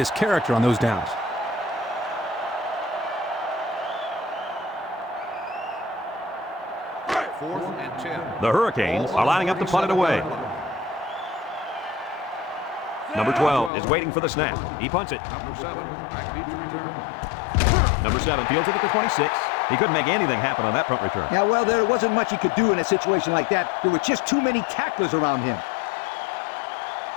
character on those downs. Fourth and 10. The Hurricanes are lining up to punt it away. Number 12 is waiting for the snap. He punts it. Number 7, back deep to return. Number 7 fields it at the 26. He couldn't make anything happen on that punt return. Yeah, well, there wasn't much he could do in a situation like that. There were just too many tacklers around him.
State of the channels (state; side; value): drops out; right; at 13.7 s